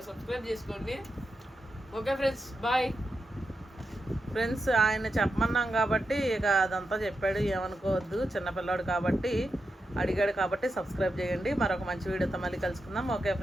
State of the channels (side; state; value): both; normal; correlation 0.88